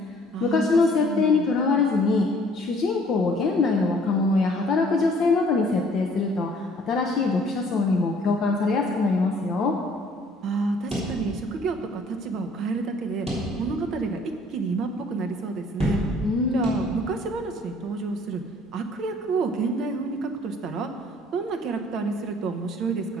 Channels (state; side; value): normal; both; correlation 0.57